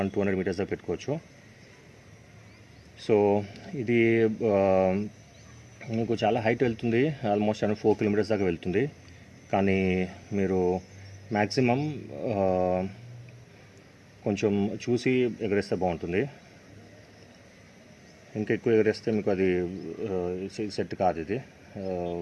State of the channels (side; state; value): both; identical; correlation 1.00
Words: 200 మీటర్స్ దాకా పెట్టుకోవచ్చు. సో ఇది మీకు చాలా హైట్ వెళ్తుంది, ఆల్మోస్ట్ 4 కిలోమీటర్స్ దాకా వెళ్తుంది. కానీ మీరు మ్యాక్సిమం కొంచెం చూసి ఎగరేస్తే బాగుంటుంది. ఇంకా ఎక్కువ ఎగరేస్తే మీకు అది సెట్ కాదు. ఇది